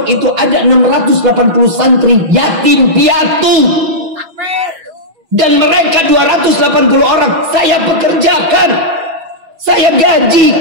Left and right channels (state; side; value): late; left; 6.1 ms